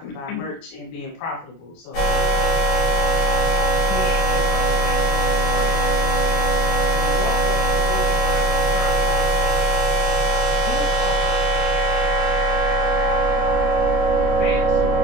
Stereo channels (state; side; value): late; right; 24 ms